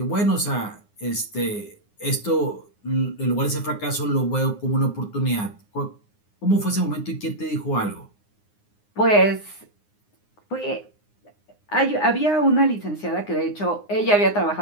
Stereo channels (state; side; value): late; right; 9.7 ms